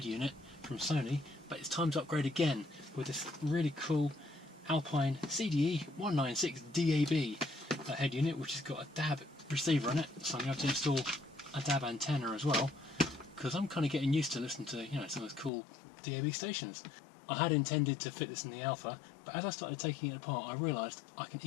unit from Sony, but it's time to upgrade again with this really cool Alpine CDE-196DAB head unit, which has got a DAB receiver on it, so I'm going to have to install a DAB antenna as well, because I'm kind of getting used to listening to, you know, some of those cool DAB stations. I had intended to fit this in the Alpha, but as I started taking it apart I realised I can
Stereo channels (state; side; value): drops out; right; at 15.5 s